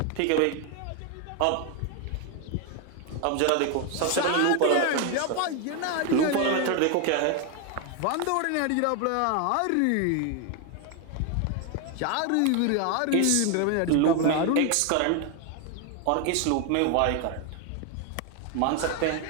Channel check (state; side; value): different; both; correlation 0.01